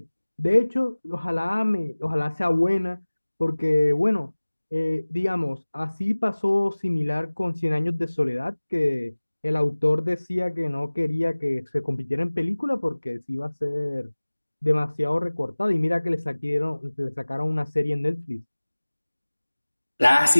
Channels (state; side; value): inverted; both; correlation -1.00